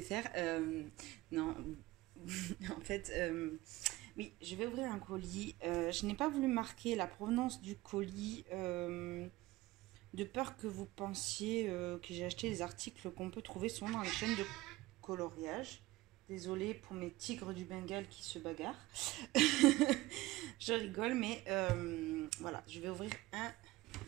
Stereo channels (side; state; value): left; quieter; 18.7 dB